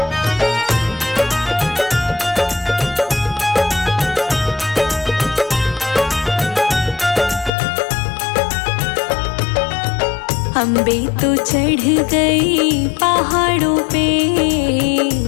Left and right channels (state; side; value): drops out; right; at 7.5 s